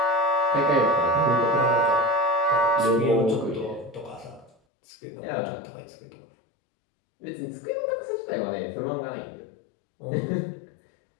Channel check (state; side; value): drops out; right; at 4.5 s